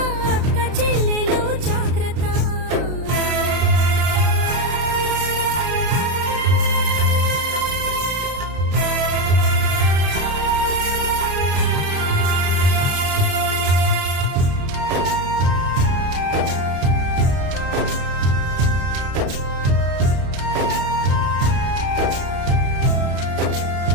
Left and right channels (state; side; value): late; left; 33 ms